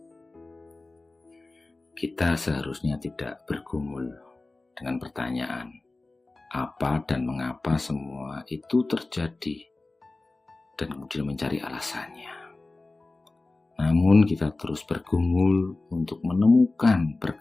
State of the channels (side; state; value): right; quieter; 3.2 dB